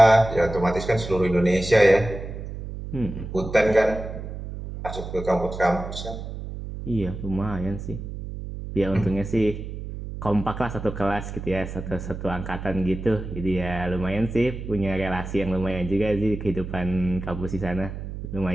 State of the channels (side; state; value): right; noise; hum, 8 dB below the sound